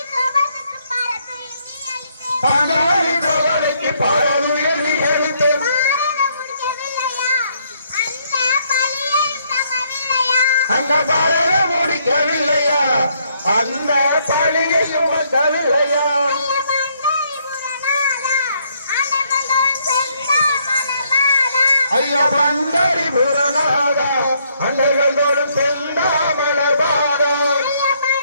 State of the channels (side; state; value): both; inverted; correlation -0.71